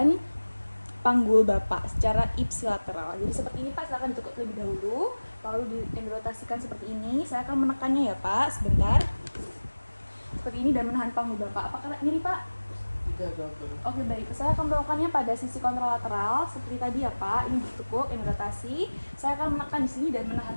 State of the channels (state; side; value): inverted; both; correlation -1.00